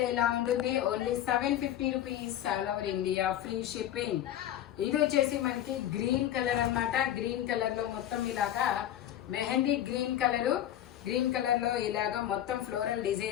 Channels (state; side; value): quieter; right; 11.8 dB